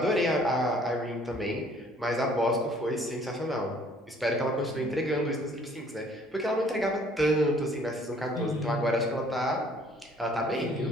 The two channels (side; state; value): both; normal; correlation 0.58